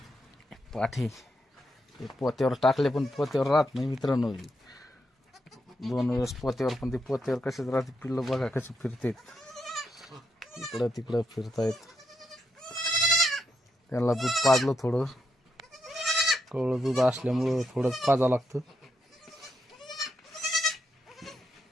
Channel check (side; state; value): both; normal; correlation 0.81